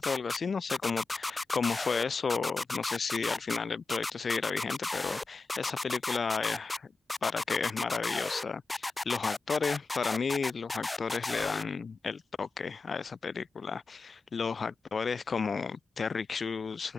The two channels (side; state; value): right; quieter; 4.2 dB